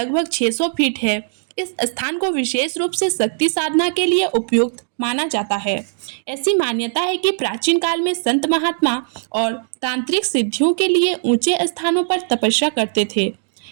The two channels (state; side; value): silent; left; digital silence